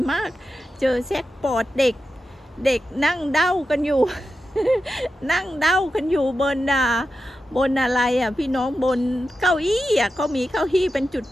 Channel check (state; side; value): normal; both; correlation 0.91